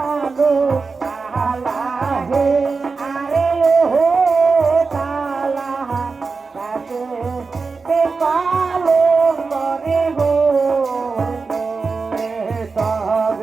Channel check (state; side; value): quieter; left; 4.5 dB